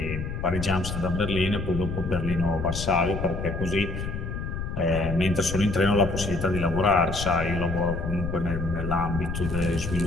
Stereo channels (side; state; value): left; noise; rumble, 5 dB below the sound